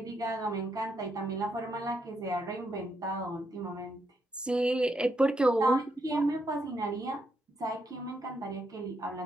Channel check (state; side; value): normal; both; correlation 0.79